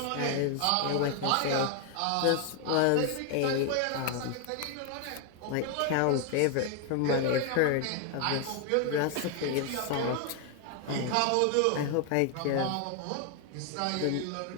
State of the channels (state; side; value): different; both; correlation 0.01